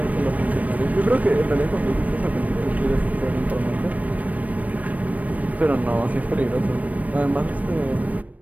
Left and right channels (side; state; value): left; late; 0.071 ms